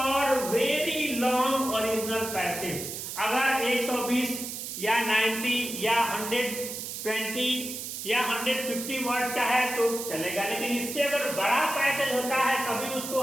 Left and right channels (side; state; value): right; noise; hiss, 7 dB below the sound